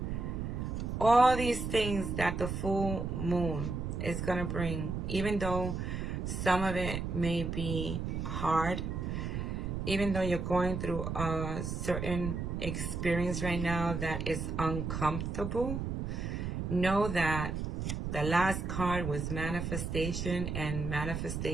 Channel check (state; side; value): noise; right; rumble, 3 dB below the sound